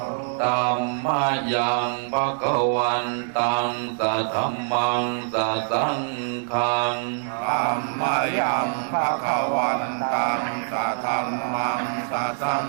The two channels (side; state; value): left; silent; 60 dB below the other